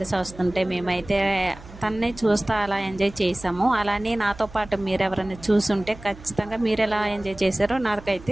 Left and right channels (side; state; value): right; noise; hum, 18 dB below the sound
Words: వస్తుంటే మేమైతే తన్నే చూస్తూ అలా ఎంజాయ్ చేసాము. అలానే నాతో పాటు మీరు ఎవరైనా చూసుంటే ఖచ్చితంగా మీరు ఎలా ఎంజాయ్ చేశారో